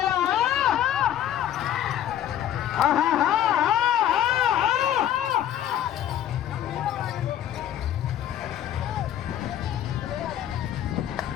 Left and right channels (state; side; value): quieter; right; 11.1 dB